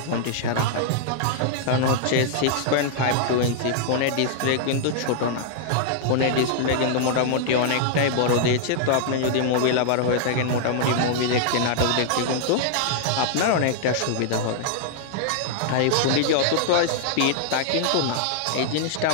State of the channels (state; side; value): different; both; correlation -0.01